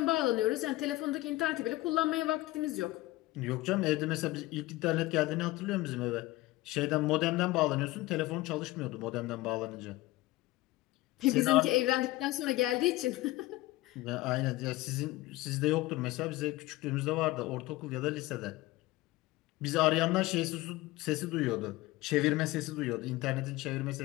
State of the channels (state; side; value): quieter; right; 18.7 dB